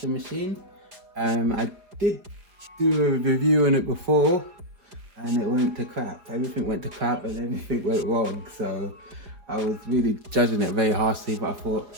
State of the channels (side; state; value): left; late; 4.9 ms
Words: machine. I did do a review on it before and it went to crap. Everything went to crap and everything went wrong. So I was really judging it very harshly, but I